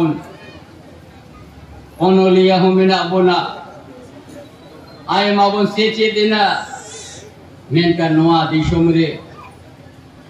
ओनोलिया हो मिना बोना आय मा बोन सेचे देना मेनका नोआ दिशों रे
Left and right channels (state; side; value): identical; both; correlation 1.00